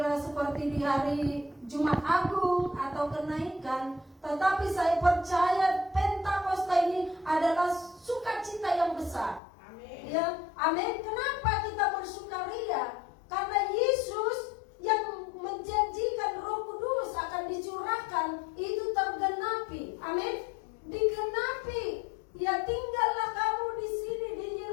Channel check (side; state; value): right; drops out; at 9.4 s